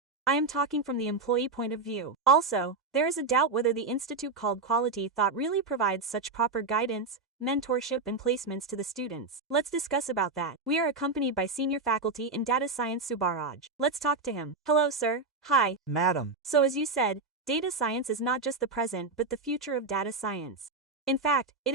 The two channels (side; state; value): left; quieter; 3.8 dB